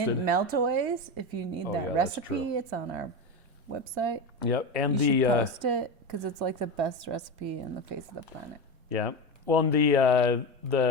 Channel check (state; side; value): late; left; 2.1 ms